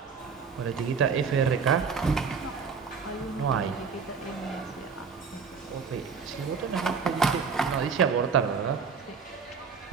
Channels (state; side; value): quieter; left; 5.7 dB